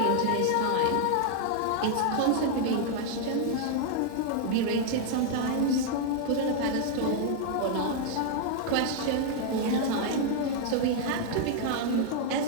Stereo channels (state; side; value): different; both; correlation 0.00